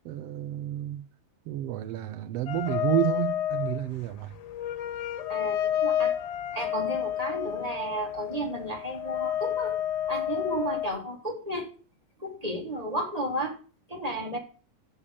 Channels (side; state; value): left; late; 1.8 ms